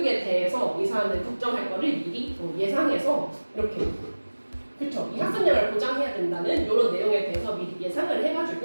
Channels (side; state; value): both; inverted; correlation -1.00